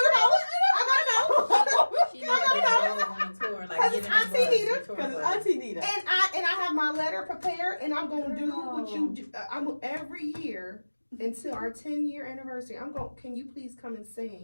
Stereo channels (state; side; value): inverted; both; correlation -1.00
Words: to know. She needs to go on a tour, like Cause get it's in the Auntie bus, Nita. the tour Because it's bus. Auntie Nita. And I have my letter prepared, and I'm gonna do what you do. I'm every year until our 10-year anniversary. Can you please come and